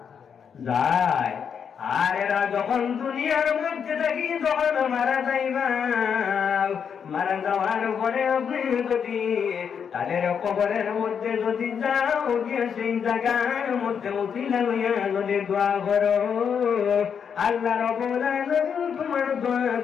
যায়। আর এরা যখন দুনিয়ার মধ্যে থাকি, যখন মারা যাইবা, মারা যাওয়ার পরে আপনি যদি তাদের কবরের মধ্যে যদি যাও, গিয়ে সেই জায়গার মধ্যে উঠিলা লইয়া যদি দোয়া করো, আল্লাহ রাব্বুল আলামিন তোমার দোয়া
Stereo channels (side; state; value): right; quieter; 7.2 dB